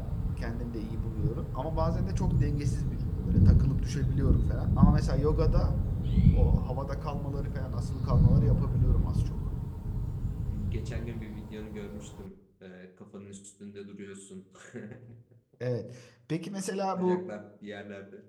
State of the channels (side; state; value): both; identical; correlation 1.00